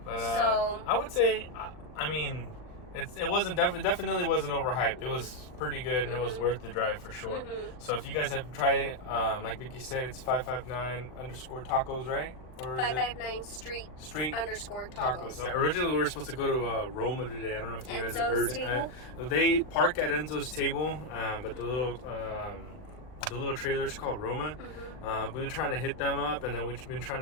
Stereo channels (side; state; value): right; late; 39 ms